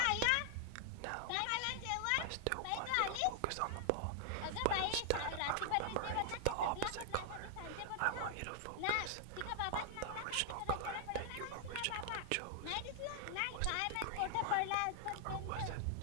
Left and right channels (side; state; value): both; different; correlation 0.00